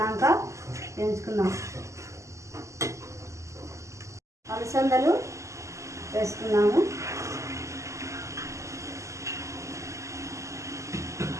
వేయించుకుందాం. అలసందలు వేసుకున్నాము.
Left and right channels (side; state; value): left; late; 0.15 ms